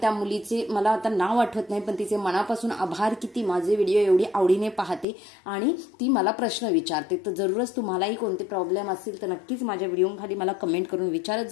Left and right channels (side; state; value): right; drops out; at 5.1 s